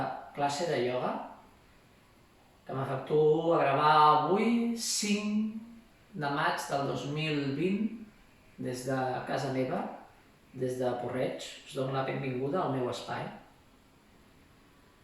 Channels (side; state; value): both; identical; correlation 1.00